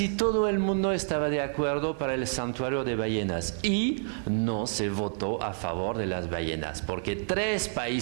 todo el mundo estaba de acuerdo para el santuario de ballenas y no se votó a favor de las ballenas, porque 3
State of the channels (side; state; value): left; silent; digital silence